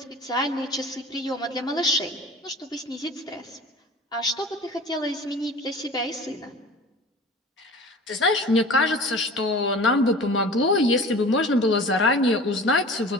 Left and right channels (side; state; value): both; normal; correlation 0.39